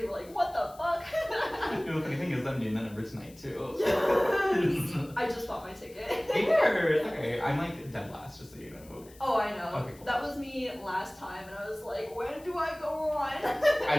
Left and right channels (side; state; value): left; noise; hiss, 24 dB below the sound